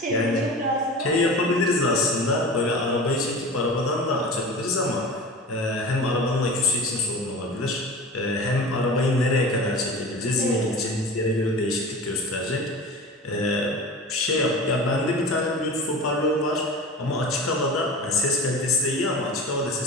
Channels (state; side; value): normal; both; correlation 0.34